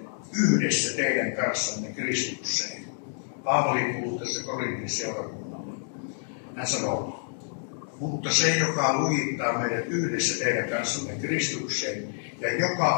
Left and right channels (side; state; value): right; silent; digital silence